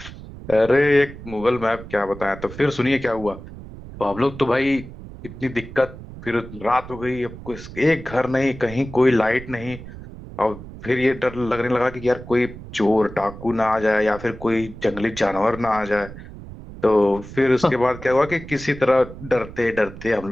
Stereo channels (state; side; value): noise; right; rumble, 14 dB below the sound